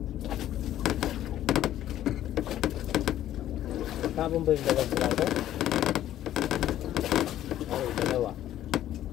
Tapon ba yung dalawang plato? Ay, dalawa.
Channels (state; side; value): quieter; right; 12.4 dB